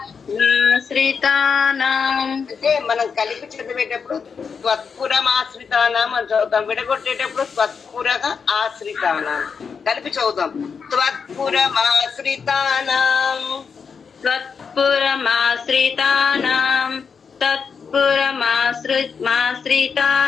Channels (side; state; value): right; quieter; 6.0 dB